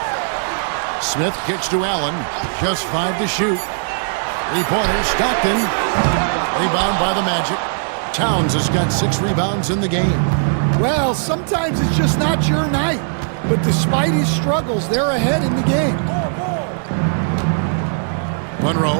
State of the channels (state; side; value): silent; left; digital silence